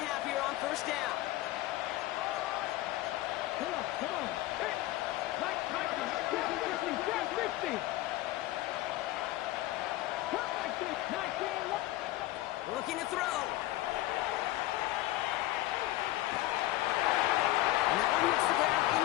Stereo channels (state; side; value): quieter; right; 16.7 dB